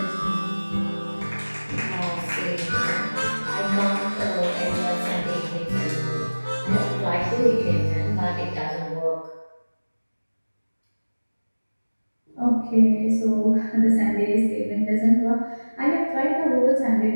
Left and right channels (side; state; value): both; inverted; correlation -1.00